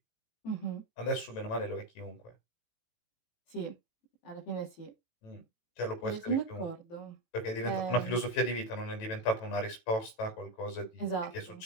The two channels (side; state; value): right; late; 18 ms